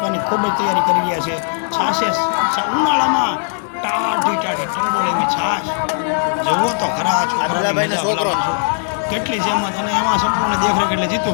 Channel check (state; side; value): silent; right; digital silence